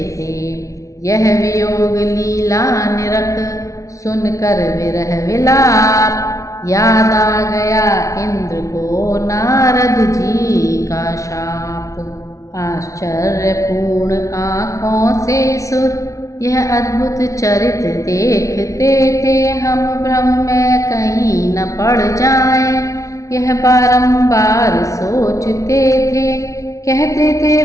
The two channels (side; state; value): right; late; 0.15 ms